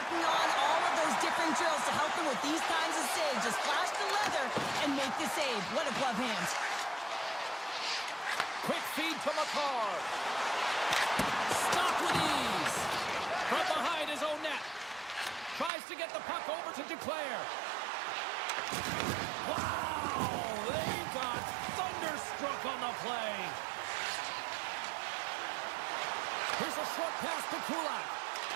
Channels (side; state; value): left; drops out; at 15.7 s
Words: on all of those different drills to help them with these kinds of saves. Just flash the leather and make the save. What a glove hand. Quick feed to McCarr. Stop with ease. From behind his own net. Tries to get the puck over to Duclair. Wow! They got thunderstruck on the play. Here's a short pass to Kulak.